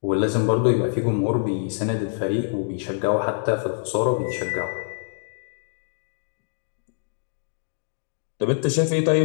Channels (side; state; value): right; silent; digital silence